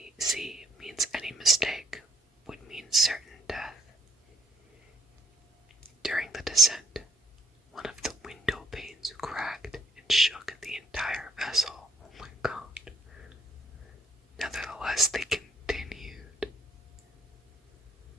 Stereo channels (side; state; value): both; normal; correlation 0.68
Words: means any mistake would mean certain death. During the descent, one of the window panes cracked and shook the entire